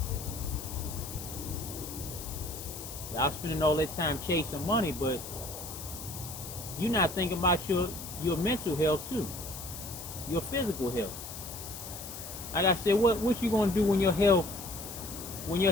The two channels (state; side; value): noise; left; hiss, 10 dB below the sound